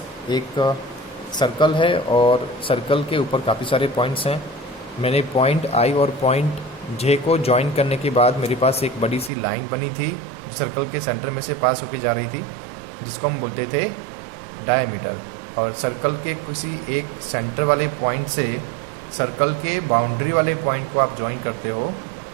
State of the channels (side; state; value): left; drops out; at 9.3 s